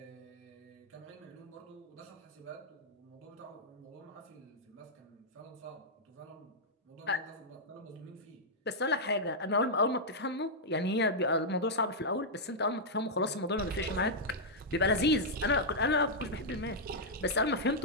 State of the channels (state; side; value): normal; both; correlation -0.06